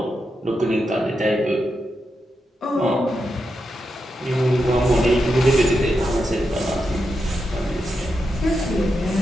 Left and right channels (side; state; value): both; normal; correlation 0.86